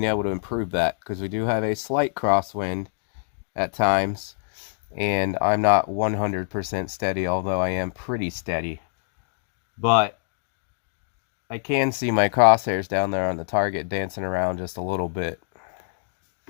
able to improve that, because we do have a slight crosswind at times, and I'm not 100% steady, although I am pretty steady. But I can see my crosshairs down there on the target dancing around just a little bit.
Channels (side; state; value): right; silent; digital silence